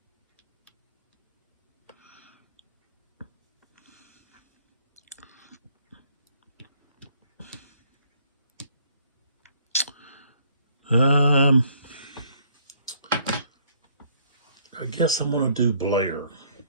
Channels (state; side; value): inverted; both; correlation -0.63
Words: I guess I'm going to do Blair